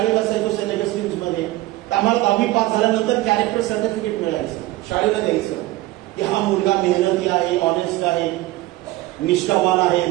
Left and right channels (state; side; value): quieter; left; 17.7 dB